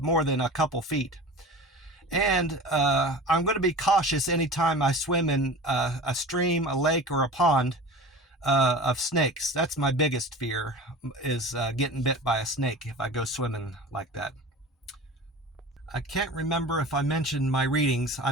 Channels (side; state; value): both; normal; correlation 0.36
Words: than a couple feet. And I'm going to be cautious anytime I swim in a stream, a lake, or a pond of snakes. That's my biggest fear, is getting bit by a snake if I go swimming like that. I can't remember if I mentioned my readings. I